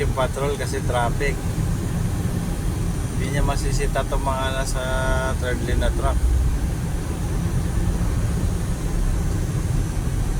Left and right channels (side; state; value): both; identical; correlation 1.00